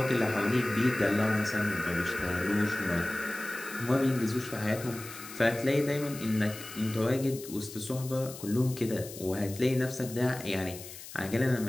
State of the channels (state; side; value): noise; left; hiss, 14 dB below the sound